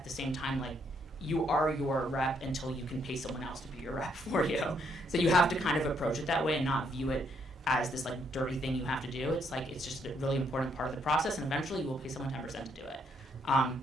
the same time, like, you are your rep until you can pay someone else to be your rep for you. So you have to kind of approach it that way and not view it as this like dirty thing you have to do. It's like, it's just a really important part of the process, and eventually you will pay someone 10% to do it.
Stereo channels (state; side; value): normal; both; correlation 0.73